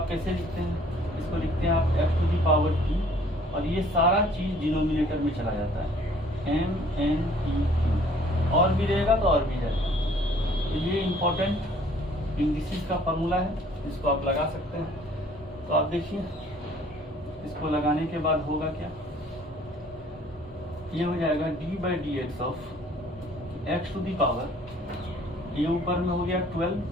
कैसे लिखते हैं, इसको लिखते हैं आप x to the power t और ये सारा चीज डिनोमिनेटर में चला जाता है, m n p q, और भी रहेगा तो और भी जाएगा। तो ये इम्पोर्टेंट इंडिसेस का फॉर्मूला है, इसको आप लगा सकते हैं। तो आप देखिए इसको लगाने के बाद होगा क्या, ये हो जाएगा d by D x of x to the power, ये ऊपर में हो गया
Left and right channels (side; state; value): both; normal; correlation 0.56